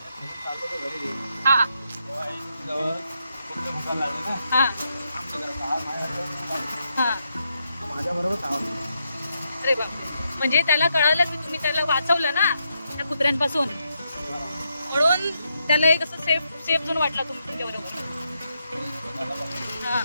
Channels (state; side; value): inverted; both; correlation -0.81